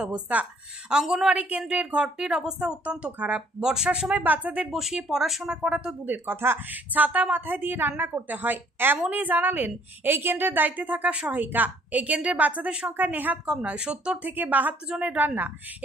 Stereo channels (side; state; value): both; normal; correlation 0.61